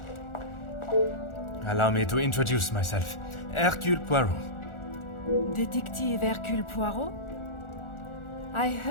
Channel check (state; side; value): late; right; 1.4 ms